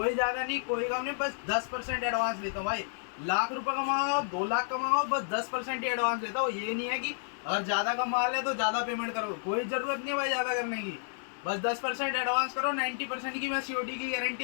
ज्यादा नहीं, कोई कम नहीं, बस 10% एडवांस लेता हूँ भाई। लाख रुपए कमाओ, 2 लाख कमाओ, बस 10% ही एडवांस लेता हूँ। ये नहीं है कि अगर ज्यादा का माल है तो ज्यादा पेमेंट करो, कोई जरूरत नहीं है भाई ज्यादा करने की। बस 10% एडवांस करो, 90% की मैं सीओडी की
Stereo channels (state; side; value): silent; right; digital silence